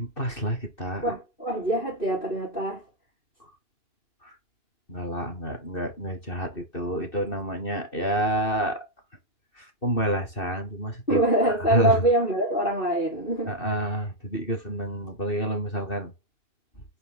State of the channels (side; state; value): right; late; 2.6 ms